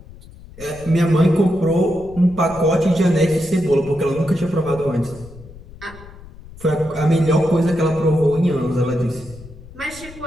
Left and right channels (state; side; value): noise; left; rumble, 18 dB below the sound